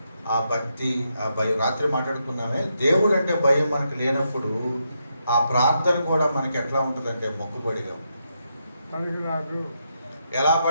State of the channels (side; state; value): both; inverted; correlation -0.81